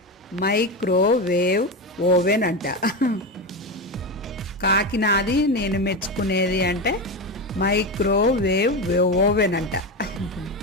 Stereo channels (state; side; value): normal; both; correlation 0.17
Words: మైక్రోవేవ్ ఓవెన్ అంట. కాకి నాది నేను మెచ్చుకునేది అంటే మైక్రోవేవ్ ఓవెన్ అంట.